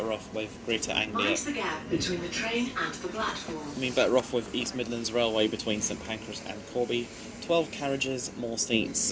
off with Greater Anglia. Mind the gap between the train and the platform. I mean, better off with East Midlands Railway between St Pancras and Corby. 12 carriages, more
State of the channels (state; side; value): identical; both; correlation 1.00